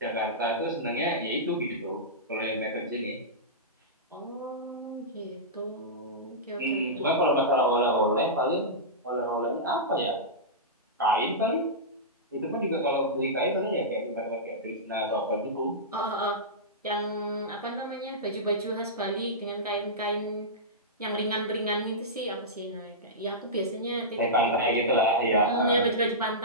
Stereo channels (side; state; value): both; normal; correlation -0.15